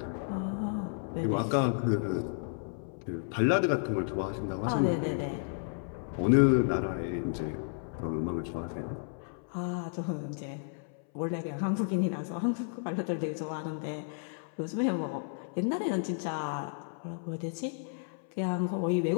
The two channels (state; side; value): silent; right; 56 dB below the other